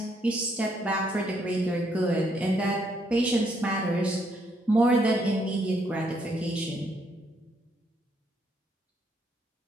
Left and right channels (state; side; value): normal; both; correlation 0.72